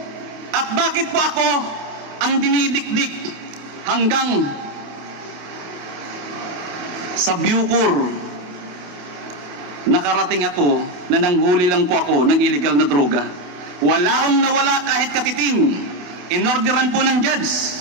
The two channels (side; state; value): left; late; 28 ms